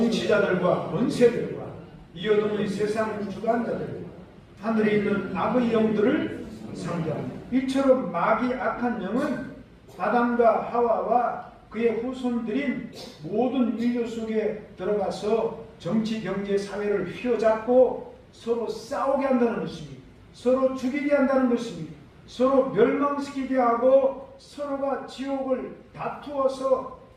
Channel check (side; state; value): both; identical; correlation 1.00